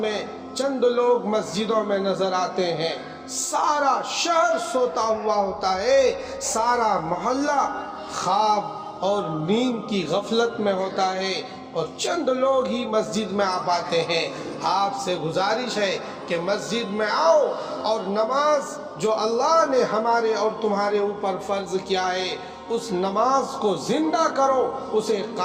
چند لوگ مسجدوں میں نظر آتے ہیں، سارا شہر سوتا ہوا ہوتا ہے، سارا محلہ خواب اور نیند کی غفلت میں ہوتا ہے، اور چند لوگ ہی مسجد میں آ پاتے ہیں۔ آپ سے گزارش ہے کہ مسجد میں آؤ اور نماز جو اللہ نے ہمارے اور تمہارے اوپر فرض کیا ہے اس نماز کو زندہ کرو، اسے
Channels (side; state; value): both; identical; correlation 1.00